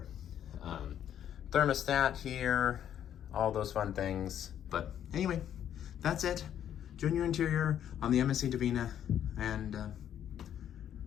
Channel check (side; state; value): right; quieter; 10.0 dB